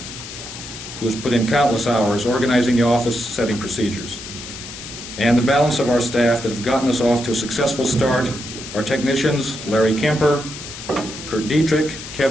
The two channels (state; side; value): noise; left; hiss, 11 dB below the sound